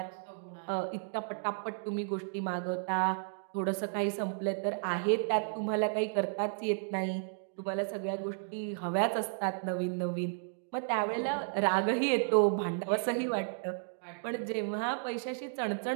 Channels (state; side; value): silent; left; digital silence